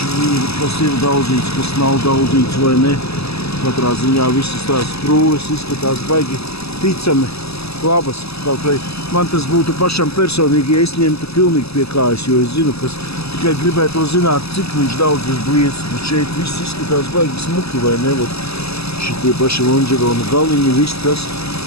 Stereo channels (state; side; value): late; right; 0.79 ms